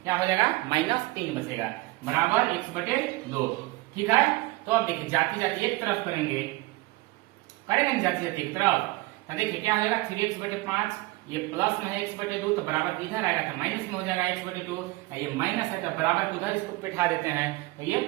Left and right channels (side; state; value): left; quieter; 21.0 dB